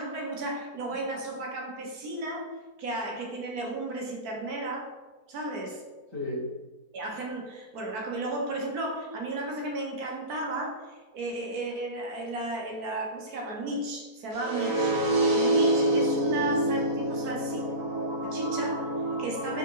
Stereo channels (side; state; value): left; late; 4.5 ms